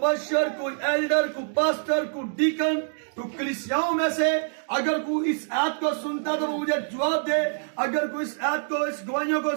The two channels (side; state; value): left; silent; digital silence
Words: कोई एल्डर, कोई पास्टर, कोई डीकन, कोई कलीसियाओं में से अगर कोई इस ऐप को सुनता तो वो मुझे जवाब दे। अगर कोई इस ऐप को, इस गवाहियों को